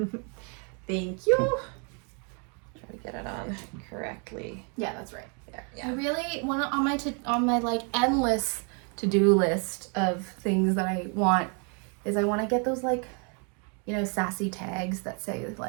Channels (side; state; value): left; quieter; 37.4 dB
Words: Thank you. Try to get it on correctly. Yeah, that's right. There. Yeah. I really want to on my like endless to-do list of things that I want is I want to get those like, you know, sassy tags that say